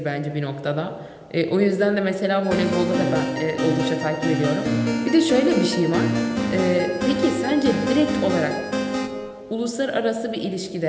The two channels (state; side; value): identical; both; correlation 1.00